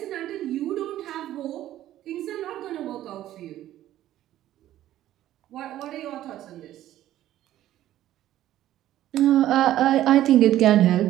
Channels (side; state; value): left; quieter; 13.2 dB